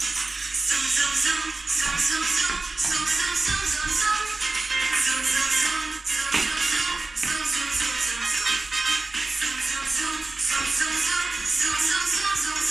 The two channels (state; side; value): quieter; left; 3.3 dB